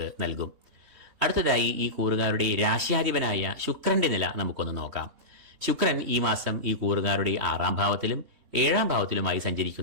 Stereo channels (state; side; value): late; left; 3.2 ms